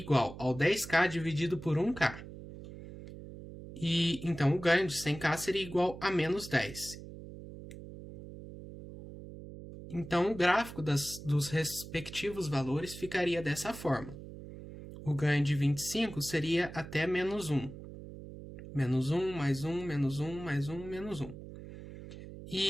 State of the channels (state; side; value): noise; right; hum, 13 dB below the sound